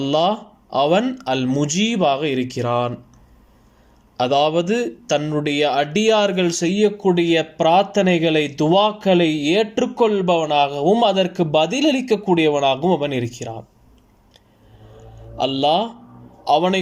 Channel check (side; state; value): both; identical; correlation 1.00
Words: அவன் அல் முஜீபாக இருக்கிறான். அதாவது தன்னுடைய அடியார்கள் செய்யக்கூடிய பிரார்த்தனைகளை, துவாக்களை ஏற்றுக்கொள்பவனாகவும் அதற்கு பதிலளிக்கக்கூடியவனாகவும் அவன் இருக்கிறான். அல்லாஹ் அவனை